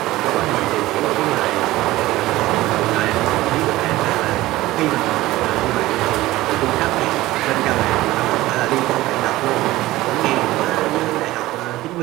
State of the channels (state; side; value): quieter; left; 17.4 dB